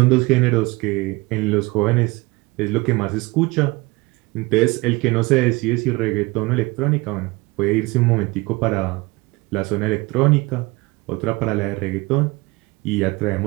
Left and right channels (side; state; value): left; quieter; 22.9 dB